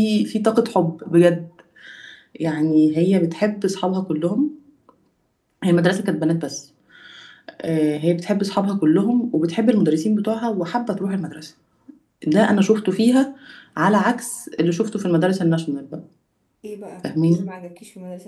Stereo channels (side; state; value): both; identical; correlation 1.00